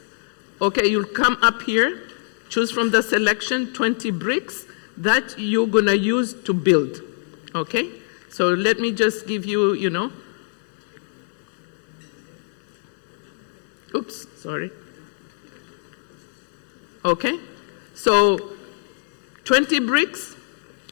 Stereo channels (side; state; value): right; silent; 63 dB below the other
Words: Okay, you'll come up here, choose from the selection 20 bricks that you're going to use to build. Okay? So let me just give you, you know. Oops, sorry. Okay? So 20 bricks.